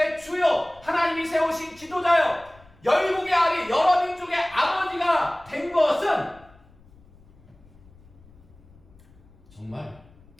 주요, 하나님이 세우신 지도자요, 열국의 아비, 여러 민족의 아버지가 된 것은 정말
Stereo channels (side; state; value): left; noise; rumble, 26 dB below the sound